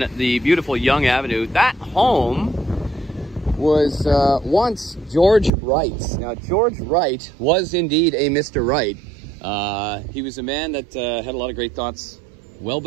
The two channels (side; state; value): left; drops out; at 5.5 s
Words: the beautiful Yonge Avenue. That home was once George Wright's. Now, George Wright was indeed a Mr. Wright. He was a man that had a lot of great thoughts well